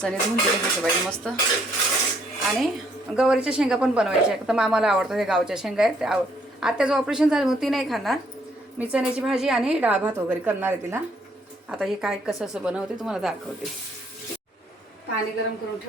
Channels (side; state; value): both; normal; correlation 0.68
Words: धुवून घ्यायचे पाहिजे मस्त. आणि गवारीच्या शेंगा पण बनवायच्या आहेत. तर मामाला आवडतं, हे गावच्या शेंगा आहेत. आत्याचं ऑपरेशन झालं म्हणून ती नाही खाणार. मी चण्याची भाजी आणि डाळ भात वगैरे करणार आहे तिला. आता हे काय कसं बनवते तुम्हाला दाखवते. पाणी गरम करून